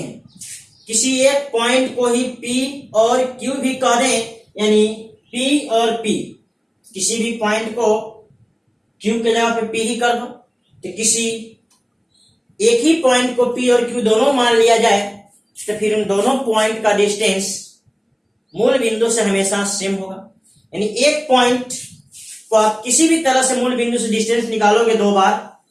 किसी एक पॉइंट को ही P और Q भी कह दें, यानी P और P, किसी भी पॉइंट को Q के जगह पे P ही कर दो। तो किसी एक ही पॉइंट को P और Q दोनों मान लिया जाए तो फिर उन दोनों पॉइंट का डिस्टेंस मूल बिंदु से हमेशा सेम होगा। यानी एक पॉइंट को आप किसी भी तरह से मूल बिंदु से डिस्टेंस निकालोगे दो बार,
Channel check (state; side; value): identical; both; correlation 1.00